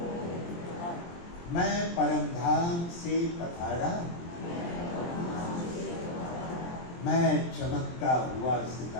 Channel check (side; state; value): right; late; 23 ms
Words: मैं परमधाम से पधारा, मैं चमकता हुआ